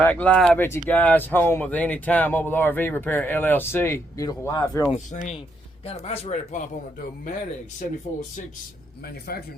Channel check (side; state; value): both; normal; correlation 0.77